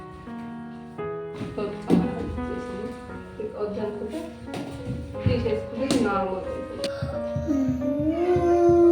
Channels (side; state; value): both; identical; correlation 1.00